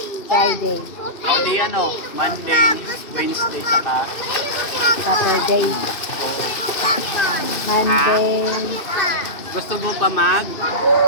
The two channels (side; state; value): right; late; 2.6 ms